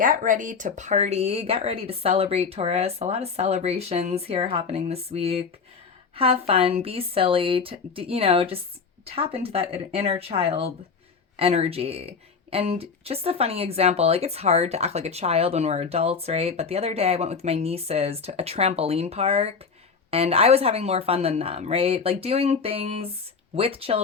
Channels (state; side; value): quieter; right; 5.4 dB